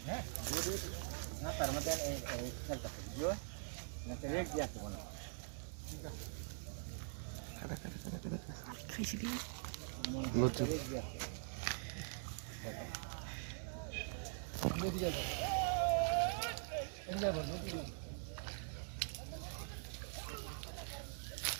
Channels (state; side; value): silent; left; digital silence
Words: হ্যাঁ না তার মধ্যে এই একটা ভিডিও না তো রেট দিতে হবে না খাইছি দি লজ্জা